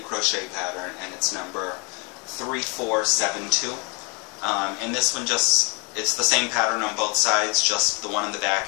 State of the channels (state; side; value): quieter; right; 32.2 dB